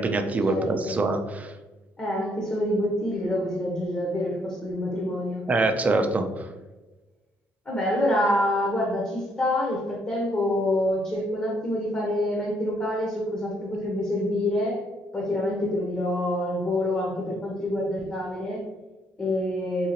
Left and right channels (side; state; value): both; normal; correlation 0.70